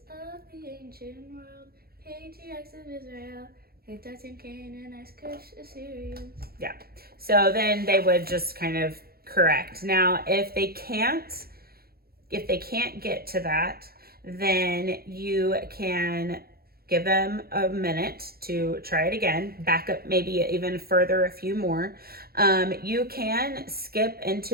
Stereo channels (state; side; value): late; left; 0.44 ms